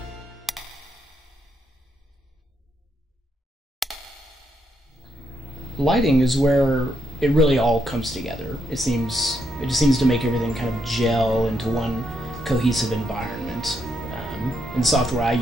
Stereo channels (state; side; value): normal; both; correlation 0.78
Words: Lighting is where it really all comes together. It just seems to make everything kind of gel into one cohesive environment. In the software I